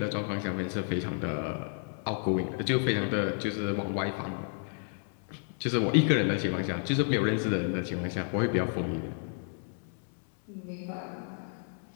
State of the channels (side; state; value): right; silent; 57 dB below the other